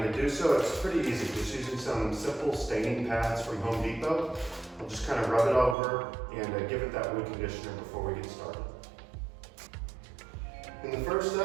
to do so, it's pretty easy, just using some simple staining pads from Home Depot. I'll just kind of rub it over and give it that wood conditioner before we get started. And the first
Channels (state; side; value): drops out; left; at 5.8 s